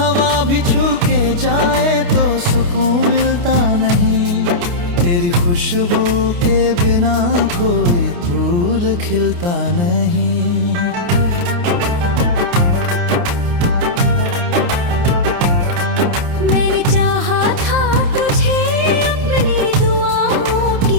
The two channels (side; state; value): left; late; 29 ms